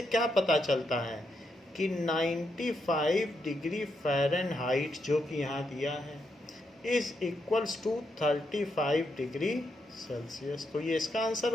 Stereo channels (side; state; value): both; normal; correlation 0.81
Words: क्या पता चलता है कि 95 डिग्री फ़ारेनहाइट जो कि यहाँ दिया है is equals to 35 degree Celsius. तो ये इसका आंसर